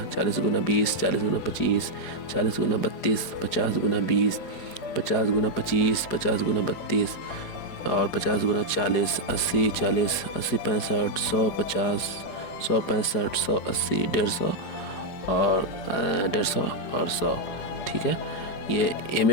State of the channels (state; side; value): late; right; 4.8 ms